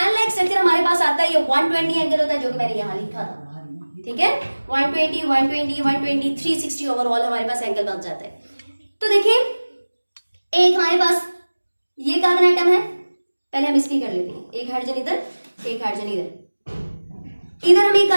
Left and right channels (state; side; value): inverted; both; correlation -1.00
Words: लाइक स्ट्रक्चर हमारे पास आता है ये 120 एंगल होता है, जो कि मैंने यहां लिखा था, ठीक है, 120 120 120 360 ओवरऑल हमारे पास एंगल बन जाता है। तो देखिए एक हमारे पास ये कार्बन एटम है, पहले हम इसकी कर लेते हैं, एक हाइड्रोजन इधर, एक हाइड्रोजन इधर हम एक